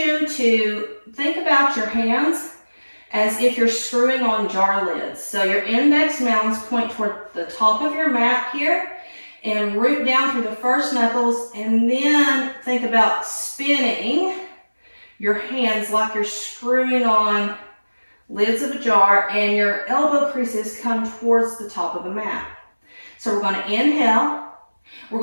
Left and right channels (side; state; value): both; inverted; correlation -1.00